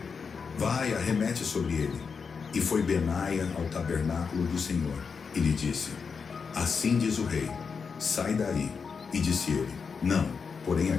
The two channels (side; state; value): right; quieter; 5.6 dB